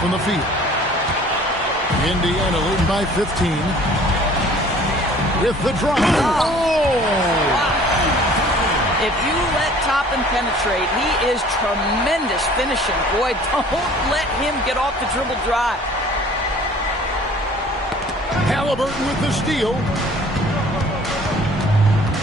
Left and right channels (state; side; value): normal; both; correlation 0.51